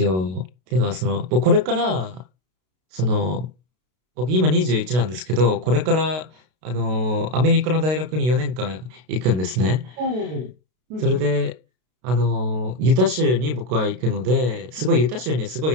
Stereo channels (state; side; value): late; left; 32 ms